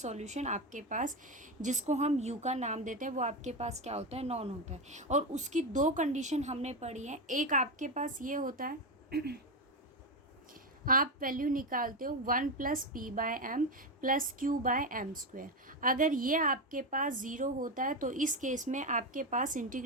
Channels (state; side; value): normal; both; correlation 0.13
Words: आपके पास जिसको हम u का नाम देते हैं वो आपके पास क्या होता है, नॉन होता है. और उसकी दो कंडीशन हमने पढ़ी है. एक आपके पास ये होता है आप वैल्यू निकालते हो 1 plus p by m plus q by m square. अगर ये आपके पास ज़ीरो होता है तो इस केस में आपके पास